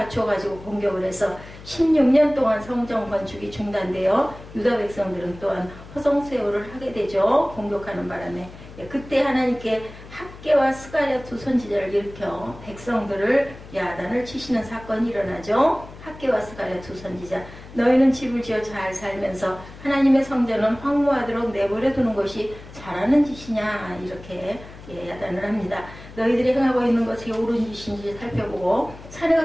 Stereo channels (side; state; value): left; noise; hum, 17 dB below the sound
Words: 공격을 해서 16년 동안 성전 건축이 중단되어 유다 백성들은 또한 허송세월을 하게 되죠. 공격하는 바람에. 그때 하나님께 학개와 스가랴 두 선지자를 일으켜 백성들을 야단을 치시는 사건이 일어나죠. 학개와 스가랴 두 선지자, 너희는 집을 지어 잘 살면서 하나님의 성전은 황무하도록 내버려 두는 것이 잘하는 짓이냐, 이렇게 야단을 합니다. 너희들이 행하고 있는 것이 옳은 짓인지 살펴보고 산에